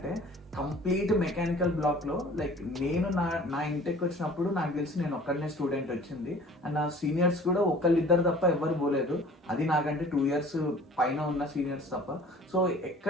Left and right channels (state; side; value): normal; both; correlation 0.48